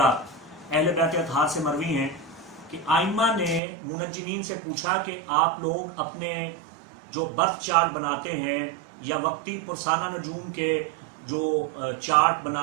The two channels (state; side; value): drops out; left; at 3.6 s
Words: अहले बैत अतहार से मरवी हैं कि आइम्मा ने मुनज्जिमीन से पूछा कि आप लोग अपने जो बर्थ चार्ट बनाते हैं या वक्ती पुरसाना नजूम के जो चार्ट